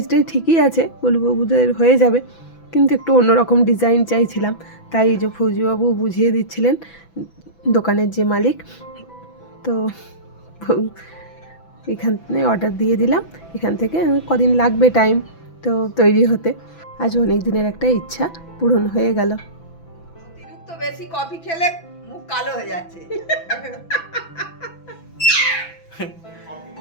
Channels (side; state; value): right; late; 6.0 ms